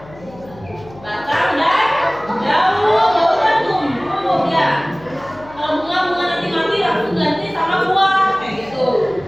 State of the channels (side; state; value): left; noise; hum, 21 dB below the sound